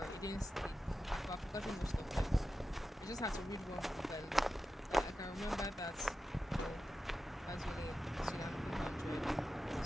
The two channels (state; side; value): normal; both; correlation 0.91